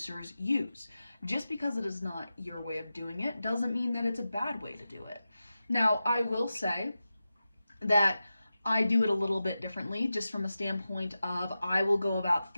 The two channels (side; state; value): both; inverted; correlation -0.92